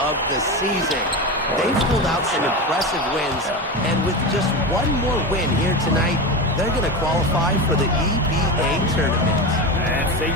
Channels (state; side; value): normal; both; correlation 0.21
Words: the season. They've pulled out some impressive wins, and with just one more win here tonight, they're going to qualify for the EBA tournament. And it's